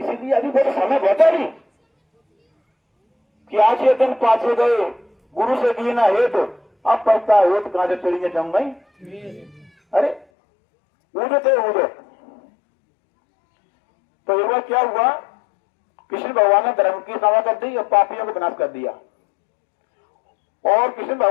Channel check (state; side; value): drops out; right; at 10.2 s